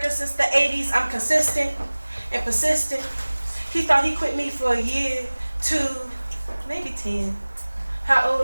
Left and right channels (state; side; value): inverted; both; correlation -1.00